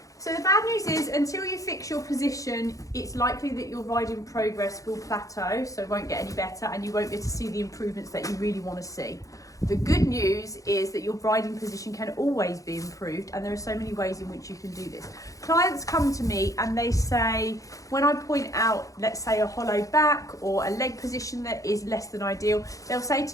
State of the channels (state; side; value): late; right; 0.16 ms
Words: So the bad news is, until you fix your position, it's likely that your riding progress will plateau, so it won't get any better, and you won't be able to see the improvements that you really want to see. The good news is that your riding position can always be improved, and there are so many ways in which you can do this. Clients come to me and they say, when I point out, let's say, a hollow back or a leg position that is less than ideal, they'll say